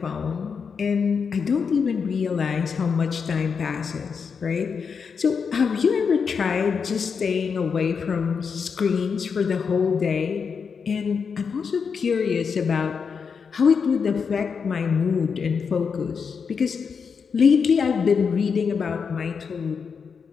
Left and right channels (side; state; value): right; quieter; 5.9 dB